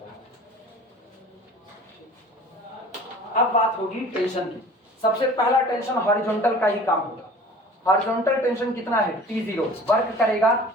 है। अब बात होगी टेंशन की। सबसे पहला टेंशन हॉरिजॉन्टल का ही काम होगा। हॉरिजॉन्टल टेंशन कितना है, T0, वर्क करेगा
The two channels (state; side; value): normal; both; correlation 0.44